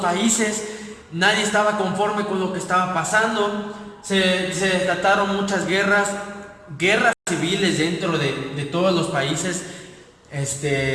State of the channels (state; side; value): identical; both; correlation 1.00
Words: países, nadie estaba conforme con lo que estaba pasando, se desataron muchas guerras civiles dentro de todos los países,